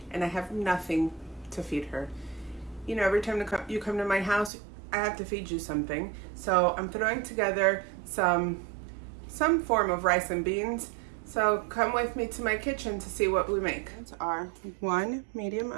and I have nothing to feed her. You know, every time you come to my house, I have to feed you something. So I'm throwing together some form of rice and beans. So come with me to my kitchen to see what we make. These are 1 medium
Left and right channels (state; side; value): drops out; left; at 4.5 s